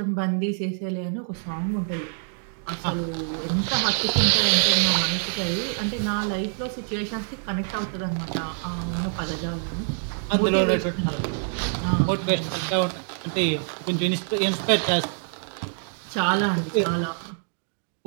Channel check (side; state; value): left; silent; 61 dB below the other